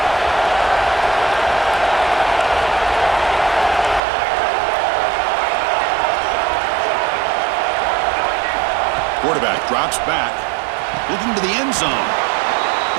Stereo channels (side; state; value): left; drops out; at 4.0 s